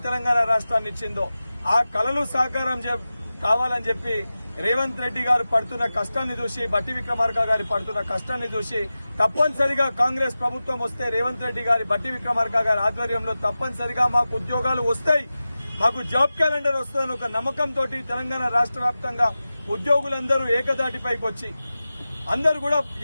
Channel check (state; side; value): inverted; both; correlation -0.95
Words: తెలంగాణ రాష్ట్రాన్ని ఇచ్చిందో ఆ కళలు సాకారం కావాలని చెప్పి రేవంత్ రెడ్డి గారు పడుతున్న కష్టాన్ని చూసి బట్టి విక్రమార్క గారి పడుతున్న కష్టాన్ని చూసి తప్పనిసరిగా కాంగ్రెస్ ప్రభుత్వం వస్తే రేవంత్ రెడ్డి గారి బట్టి విక్రమార్క గారి ఆధ్వర్యంలో తప్పనిసరిగా మాకు ఉద్యోగాలు వస్తాయి, మాకు జాబ్ క్యాలెండర్ వస్తుందని ఒక నమ్మకంతో తెలంగాణ రాష్ట్ర వ్యాప్తంగా ఉద్యోగులందరూ ఏకదాటిపైకి వచ్చి అందరూ కూడా